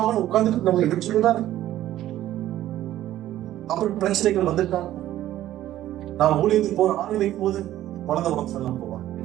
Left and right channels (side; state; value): left; quieter; 13.5 dB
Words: ஆகும் உட்காந்துட்டு நம்ம எடுத்துதான். அப்புறம் பிரச்சனைகள் வந்துட்டாங்க. நான் ஊழியத்துக்கு போற ஆணை வைக்கும் போது குழந்தை உடம்பு செல்லாம் போவாங்க,